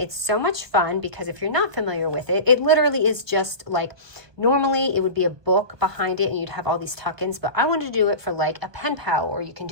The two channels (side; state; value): left; late; 1.3 ms